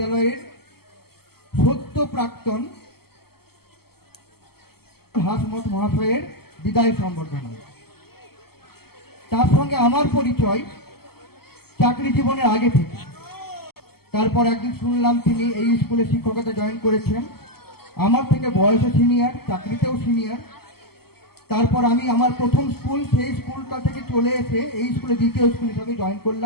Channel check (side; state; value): right; late; 0.95 ms